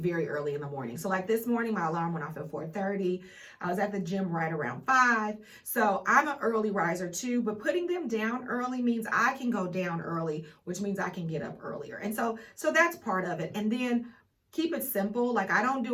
early in the morning. So like this morning, my alarm went off at 4:30. I was at the gym right around 5. So I'm an early riser too, but putting them down early means I can go down early, which means I can get up earlier. And so that's part of it. And then keep it simple. Like I don't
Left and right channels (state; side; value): identical; both; correlation 1.00